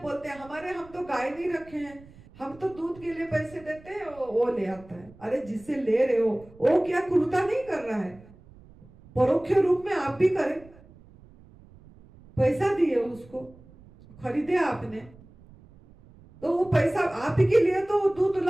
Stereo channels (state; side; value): noise; right; rumble, 23 dB below the sound